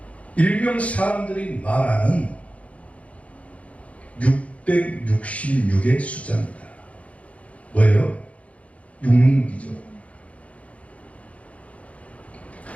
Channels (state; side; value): late; right; 0.065 ms